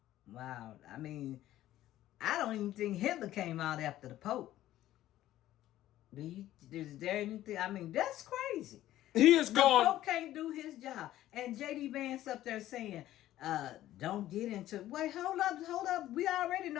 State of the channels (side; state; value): right; quieter; 13.9 dB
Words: Wow. I mean, I don't even think Hitler came out after the Pope. Is there anything? I mean, that's crazy. He is gone. The Pope can't do his job. And J.D. Vance up there saying, don't get into, wait, hold up. We already